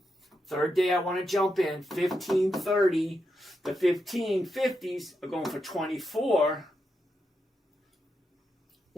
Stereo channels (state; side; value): normal; both; correlation 0.84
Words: Third day I want to jump in. 1530. The 1550s are going for 24.